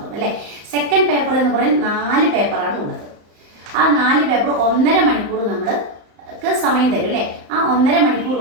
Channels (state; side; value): late; left; 34 ms